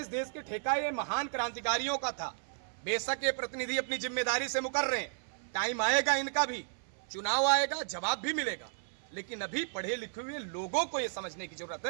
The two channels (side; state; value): left; silent; 55 dB below the other